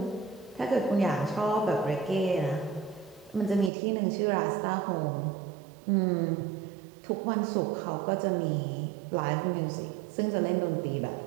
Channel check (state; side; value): drops out; left; at 3.7 s